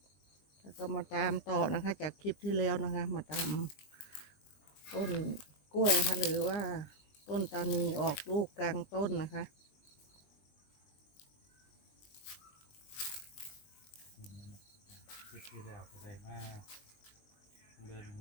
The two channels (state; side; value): late; right; 20 ms